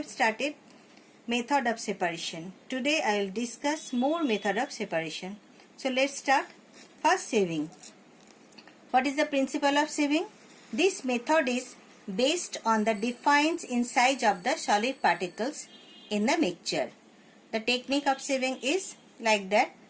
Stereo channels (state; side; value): identical; both; correlation 1.00